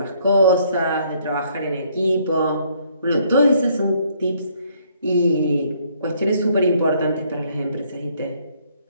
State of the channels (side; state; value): both; inverted; correlation -0.66